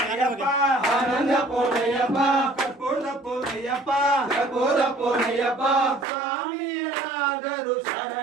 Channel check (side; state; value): left; drops out; at 6.1 s